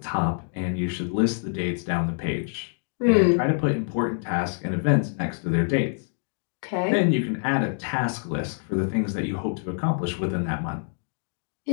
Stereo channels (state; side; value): silent; right; 58 dB below the other